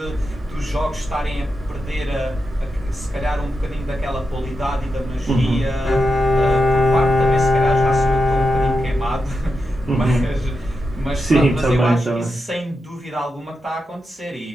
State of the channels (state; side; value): normal; both; correlation 0.88